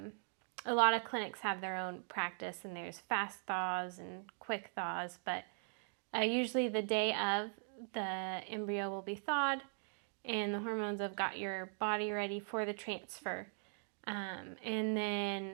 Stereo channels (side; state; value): left; silent; 51 dB below the other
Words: a lot of clinics have their own practice, and there's fast thaws and quick thaws, but usually the day of, the embryo will be thawed and the hormones have got your body ready for the transfer. And